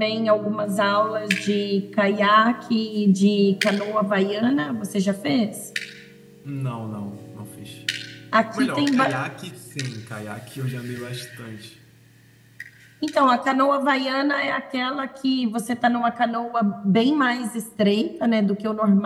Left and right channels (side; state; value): both; identical; correlation 1.00